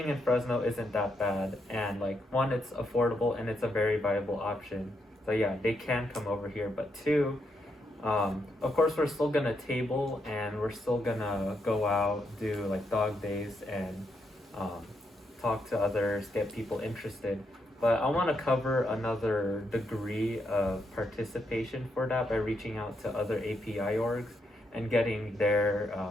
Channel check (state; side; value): normal; both; correlation 0.80